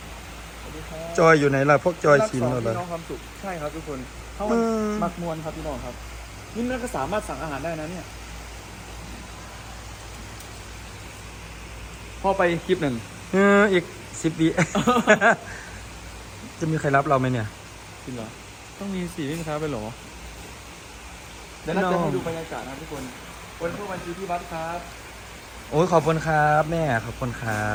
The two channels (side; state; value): both; identical; correlation 1.00